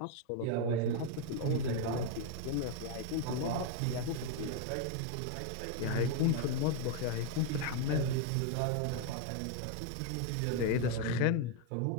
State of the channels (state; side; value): different; both; correlation 0.01